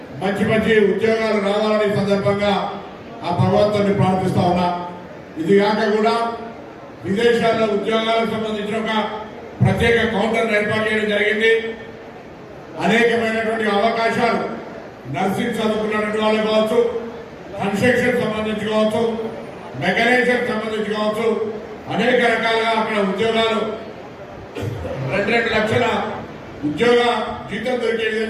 మంచి మంచి ఉద్యోగాలు రావాలని సందర్భంగా ఆ భగవంతుని ప్రార్థిస్తా ఉన్నా. ఇది కాక కూడా విదేశాల్లో ఉద్యోగాలకు సంబంధించిన ఒక ప్రత్యేక కౌంటర్ ఏర్పాటు చేయడం జరిగింది. అనేకమైనటువంటి అవకాశాలు నర్సింగ్ చదువుకున్నటువంటి వాళ్ళు కావచ్చు, కన్స్ట్రక్షన్ సంబంధించి కావచ్చు, మెకానిజం సంబంధించి కావచ్చు, అనేక రకాలుగా అక్కడ ఉద్యోగాలు 2 లక్షల ఉద్యోగ జీతం దొరికే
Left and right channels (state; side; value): identical; both; correlation 1.00